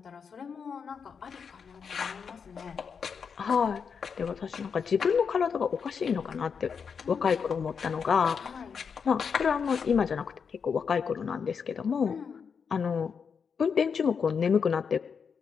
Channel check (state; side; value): quieter; right; 6.3 dB